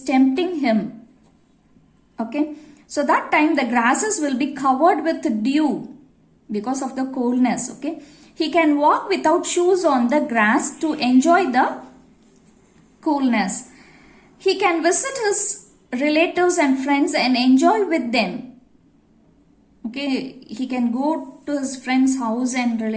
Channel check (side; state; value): both; identical; correlation 1.00